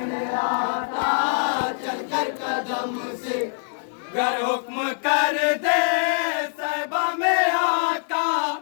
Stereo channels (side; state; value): right; silent; 57 dB below the other